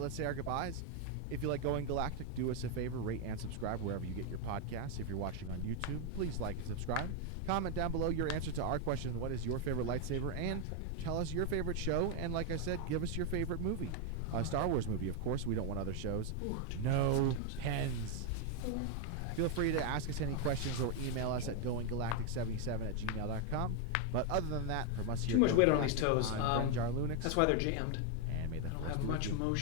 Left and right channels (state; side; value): different; both; correlation 0.01